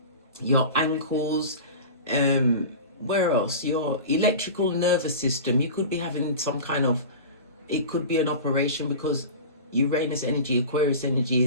your ankles, where else? Your electrical nervous system. You could be having some kind of, it could be an operation because Uranus energy, Aquarius energy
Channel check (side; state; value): both; inverted; correlation -0.32